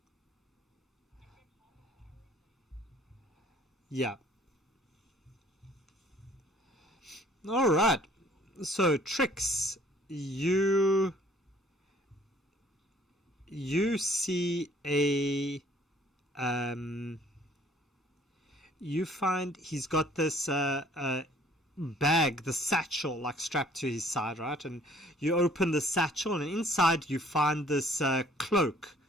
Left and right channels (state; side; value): normal; both; correlation 0.57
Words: Yeah. All right. So Trix, you see um you find he's got this bag, the satchel, like strapped to his side, right? And you open the satchel, and inside you find this cloak